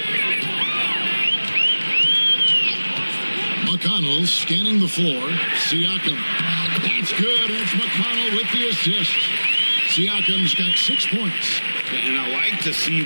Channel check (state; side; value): inverted; both; correlation -1.00